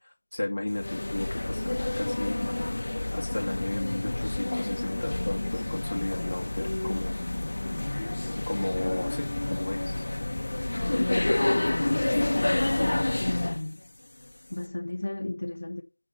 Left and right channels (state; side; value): inverted; both; correlation -1.00